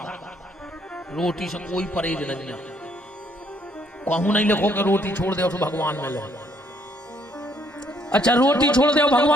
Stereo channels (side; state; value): both; normal; correlation 0.68